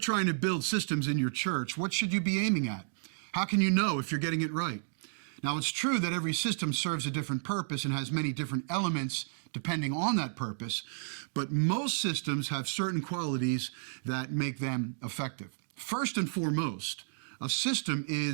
to build systems in your church, what should you be aiming at? How can you know if you're getting it right? Now, it's true that every system serves a different purpose and has many different elements depending on that purpose, but most systems have certain qualities that make them effective. First and foremost, a system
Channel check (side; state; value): left; silent; digital silence